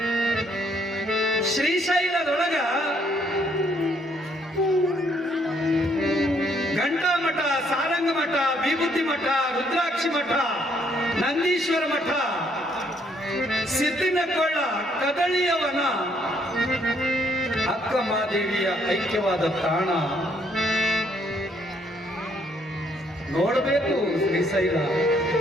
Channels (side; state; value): both; normal; correlation 0.68